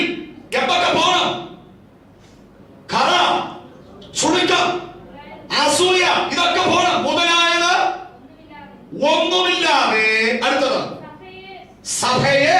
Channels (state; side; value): identical; both; correlation 1.00